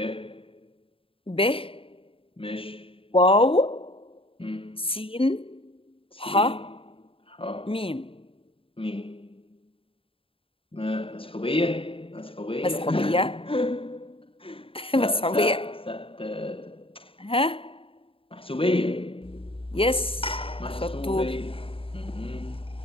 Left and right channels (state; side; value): late; right; 0.26 ms